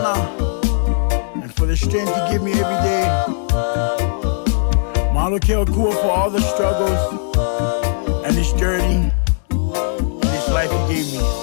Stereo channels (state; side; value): silent; right; 67 dB below the other